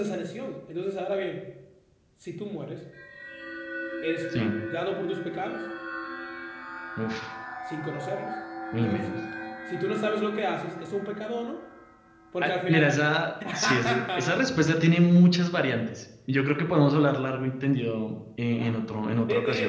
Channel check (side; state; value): both; identical; correlation 1.00